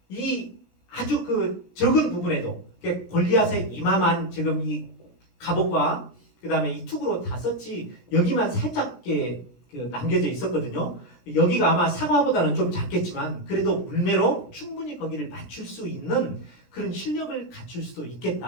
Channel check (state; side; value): late; right; 17 ms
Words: 이 아주 그 적은 부분에도 골리앗의 이마만 지금 이 갑옷과 그 다음에 이 툭으로 다 썼지 여기만 살짝 남겨져 있었거든요. 여기가 아마 사과보다는 좀 작겠지만 그래도 물매로 충분히 거기를 맞출 수 있는 그런 실력을 갖출 수도